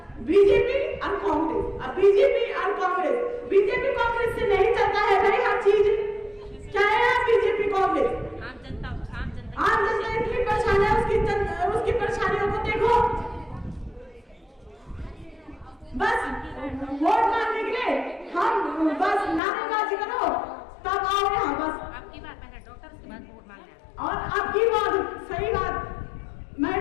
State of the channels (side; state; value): right; drops out; at 19.4 s